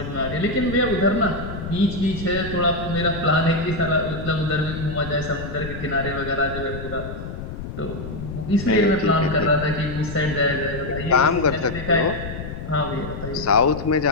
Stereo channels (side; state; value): left; noise; rumble, 8 dB below the sound